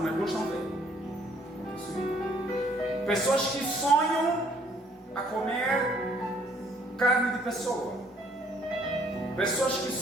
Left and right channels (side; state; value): both; normal; correlation 0.63